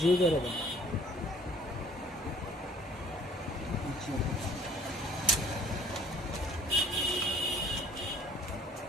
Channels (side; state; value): both; normal; correlation 0.55